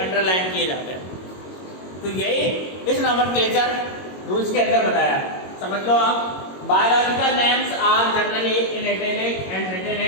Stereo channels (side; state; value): right; late; 22 ms